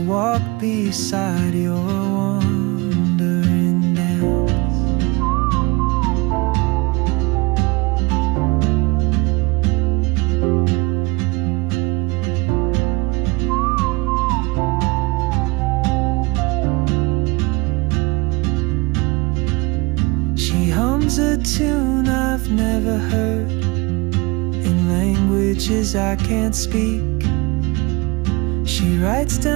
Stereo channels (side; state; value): left; quieter; 24.9 dB